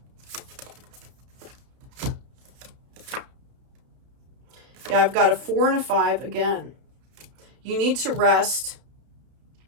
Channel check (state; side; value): late; left; 32 ms